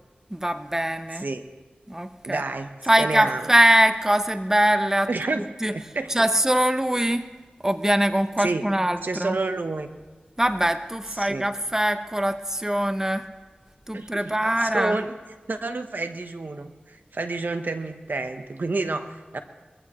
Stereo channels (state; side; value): normal; both; correlation 0.92